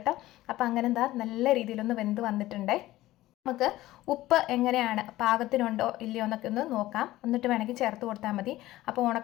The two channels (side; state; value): right; quieter; 16.3 dB